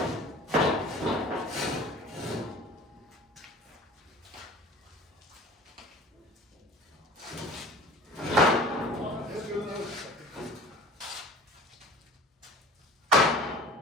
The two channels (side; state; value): both; normal; correlation 0.43